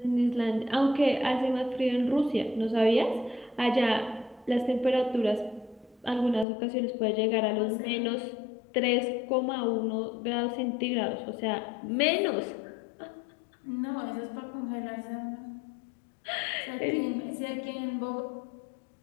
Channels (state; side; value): drops out; right; at 6.5 s